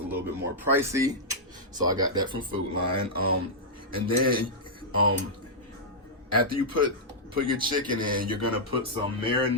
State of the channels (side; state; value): both; normal; correlation -0.08